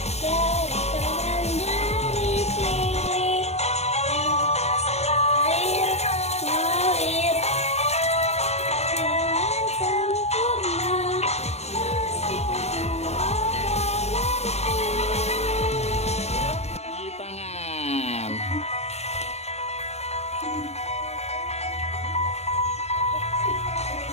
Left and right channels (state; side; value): late; right; 0.31 ms